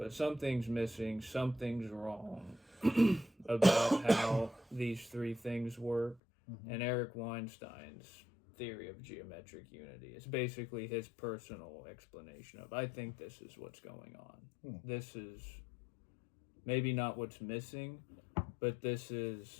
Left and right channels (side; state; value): right; drops out; at 6.2 s